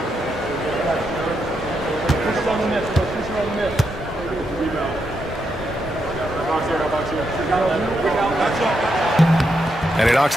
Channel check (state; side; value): normal; both; correlation 0.82